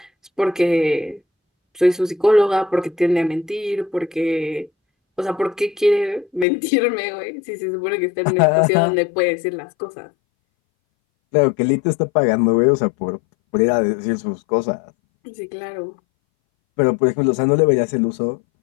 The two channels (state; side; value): drops out; right; at 6.5 s